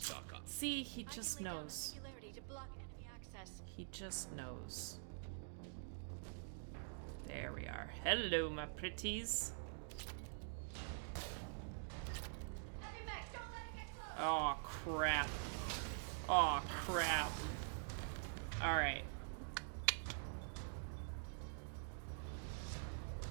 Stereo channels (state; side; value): silent; left; digital silence